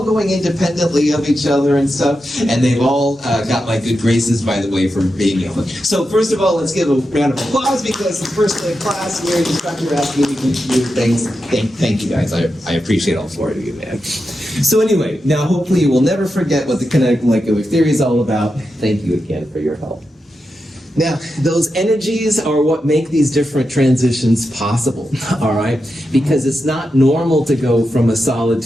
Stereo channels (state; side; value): normal; both; correlation 0.89